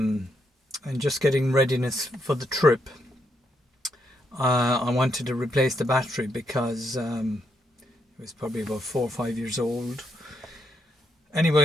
just getting readiness for the trip. I wanted to replace the battery because it was probably about 4 or 5 years old.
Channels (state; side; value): normal; both; correlation 0.78